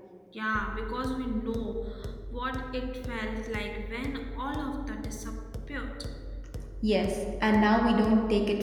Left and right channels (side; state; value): both; identical; correlation 1.00